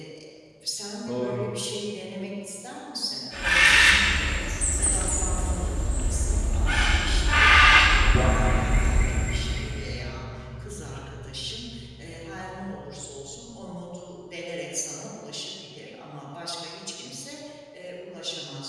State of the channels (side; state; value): both; identical; correlation 1.00